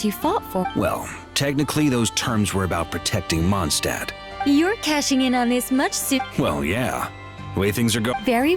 you fought for? Well, technically those terms were about protecting Mondstadt. You're cashing in on this much soon. Well, yeah. The way things are going... Very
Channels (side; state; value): both; identical; correlation 1.00